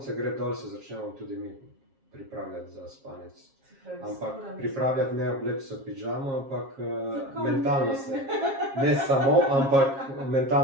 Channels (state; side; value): late; left; 7.4 ms